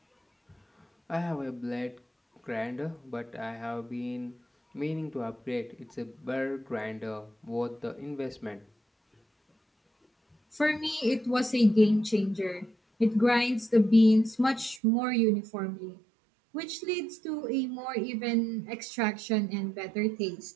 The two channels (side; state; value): left; drops out; at 14.8 s